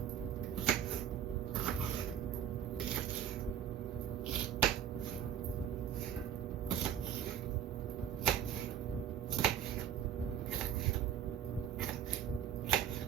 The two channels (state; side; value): quieter; left; 9.3 dB